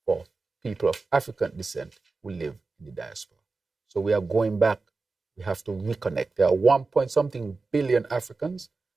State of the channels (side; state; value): left; quieter; 3.9 dB